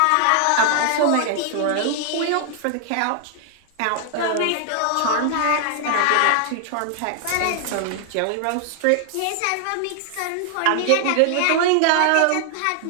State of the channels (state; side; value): different; both; correlation 0.00